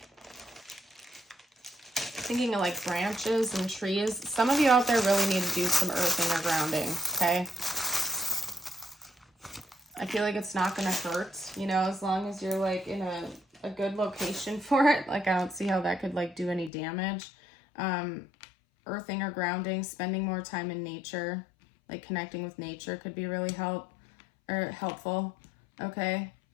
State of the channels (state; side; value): drops out; right; at 16.7 s